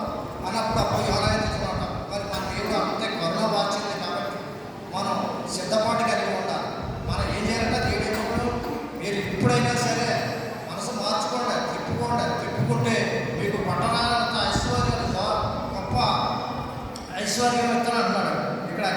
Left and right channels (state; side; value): identical; both; correlation 1.00